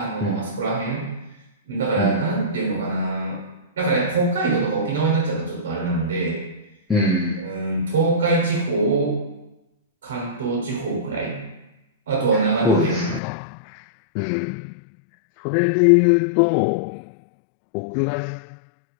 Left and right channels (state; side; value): drops out; right; at 13.2 s